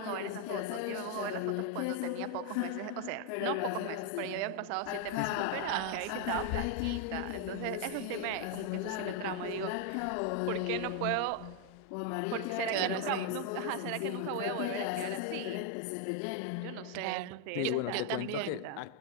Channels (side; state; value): both; different; correlation 0.01